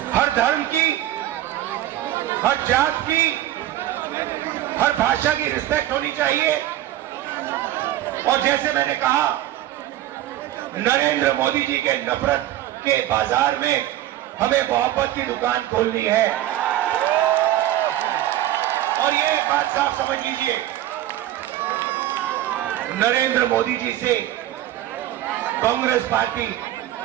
हर धर्म की, हर जात की, हर भाषा की रिस्पेक्ट होनी चाहिए। और जैसे मैंने कहा, नरेंद्र मोदी जी के नफरत के बाजार में हमें मोहब्बत की दुकान खोलनी है। और ये एक बात साफ समझ लीजिए, नरेंद्र मोदी जी से कांग्रेस पार्टी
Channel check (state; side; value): quieter; left; 13.6 dB